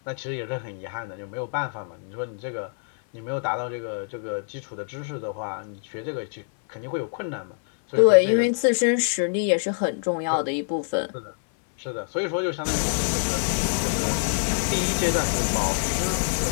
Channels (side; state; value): right; silent; 61 dB below the other